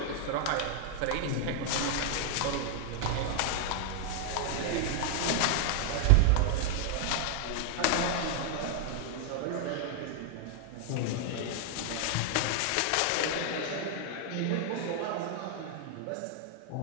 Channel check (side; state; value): both; different; correlation 0.00